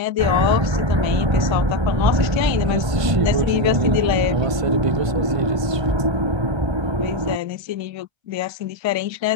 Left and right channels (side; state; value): left; late; 1.3 ms